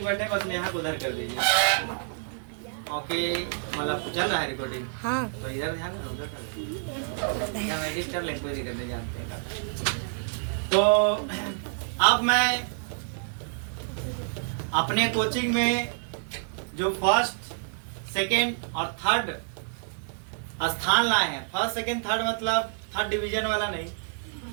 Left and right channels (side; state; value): left; silent; digital silence